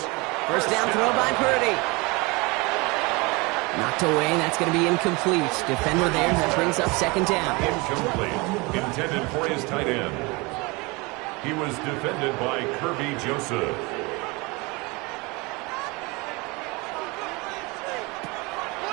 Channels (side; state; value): left; quieter; 26.0 dB